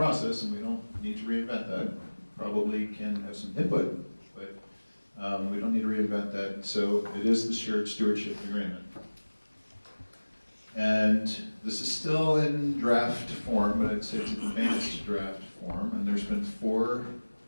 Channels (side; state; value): both; inverted; correlation -1.00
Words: and we don't need to reinvent that. Probably can have some input, but we don't need to reinvent that. So it is the shared stewardship agreement. And this is still in draft form, but I'd say it's advanced draft form. And there's been 4.